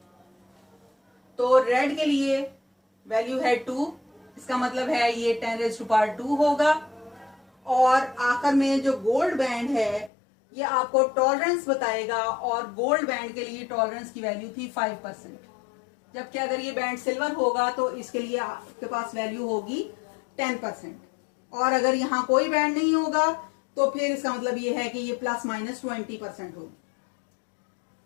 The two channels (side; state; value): right; drops out; at 10.1 s